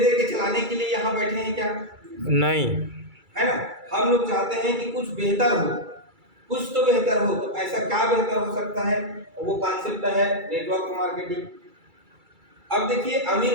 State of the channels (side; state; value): left; late; 2.3 ms